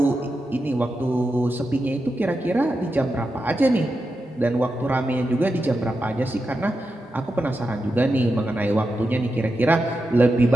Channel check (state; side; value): normal; both; correlation 0.89